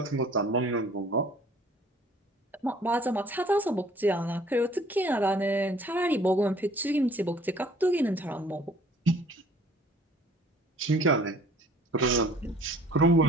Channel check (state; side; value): normal; both; correlation 0.55